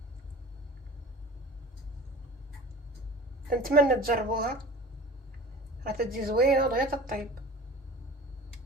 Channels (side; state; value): both; normal; correlation 0.39